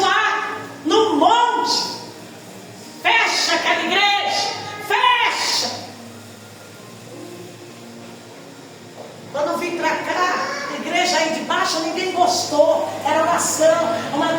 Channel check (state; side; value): identical; both; correlation 1.00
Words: no monte. Fecha aquela igreja. Fecha. Quando vim para cá, a igreja aí de baixo, ninguém gostou. Era oração.